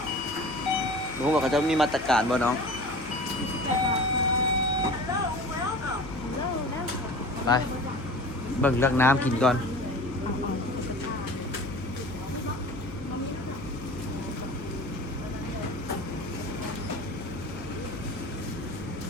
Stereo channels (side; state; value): left; noise; hum, 14 dB below the sound